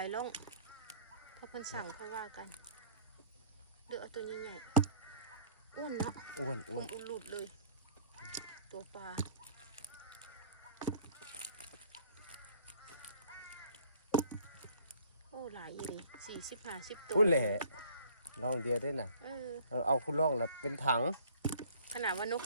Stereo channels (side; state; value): both; inverted; correlation -0.55